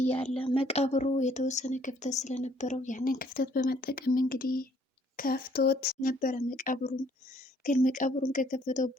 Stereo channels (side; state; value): both; normal; correlation 0.63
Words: መቃብሩ የተወሰነ ክፍተት ስለነበረው ያንን ክፍተት በመጠቀም እንግዲህ ከፍቶት ነበረ መቃብሩን። ግን መቃብሩን ከከፈተው